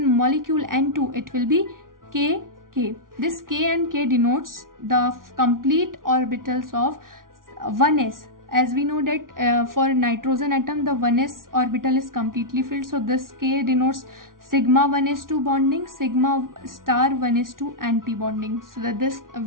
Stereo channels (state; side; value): late; left; 0.90 ms